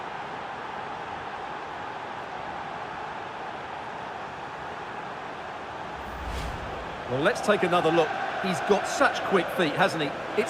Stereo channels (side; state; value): both; identical; correlation 1.00